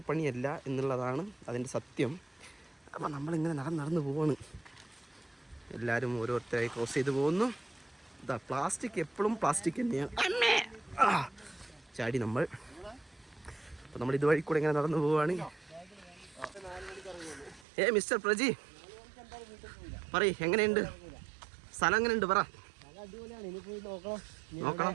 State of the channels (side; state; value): left; drops out; at 17.7 s